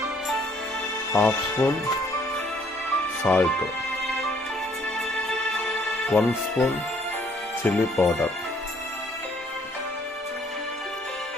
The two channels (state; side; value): normal; both; correlation 0.64